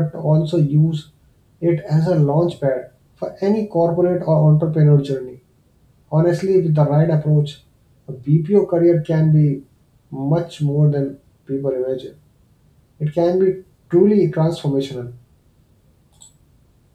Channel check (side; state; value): both; identical; correlation 1.00